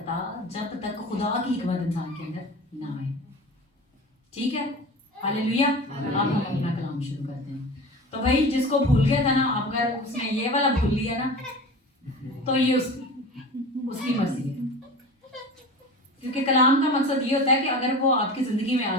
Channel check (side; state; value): both; normal; correlation 0.34